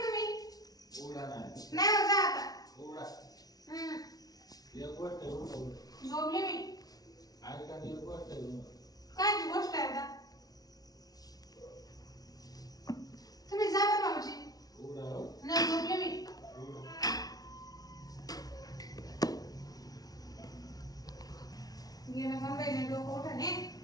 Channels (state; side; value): late; right; 0.18 ms